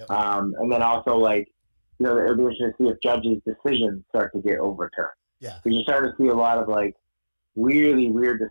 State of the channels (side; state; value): both; inverted; correlation -1.00